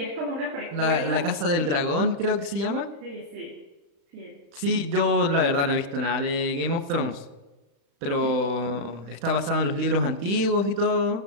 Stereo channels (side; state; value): left; late; 36 ms